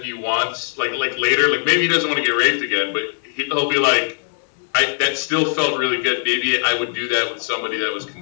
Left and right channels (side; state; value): right; silent; 66 dB below the other